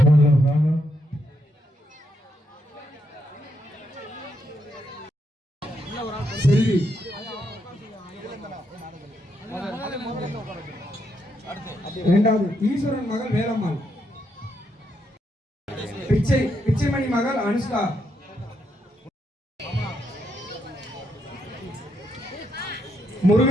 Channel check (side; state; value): both; normal; correlation 0.78